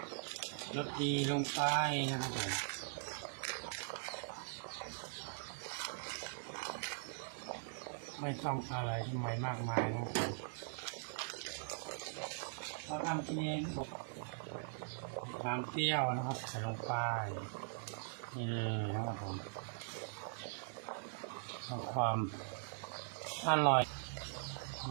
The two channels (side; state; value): left; silent; digital silence